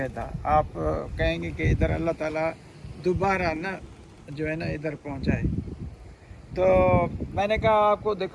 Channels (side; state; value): both; identical; correlation 1.00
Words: आप कहेंगे कि इधर अल्लाह ताला दोबारा ना जो है ना इधर पहुंचाए। तो मैंने कहा आपको